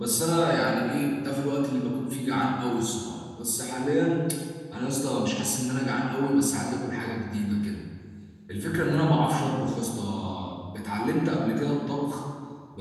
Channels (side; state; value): both; identical; correlation 1.00